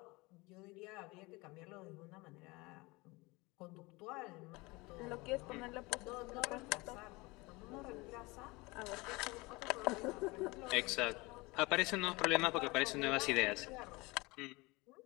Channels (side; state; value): right; quieter; 24.0 dB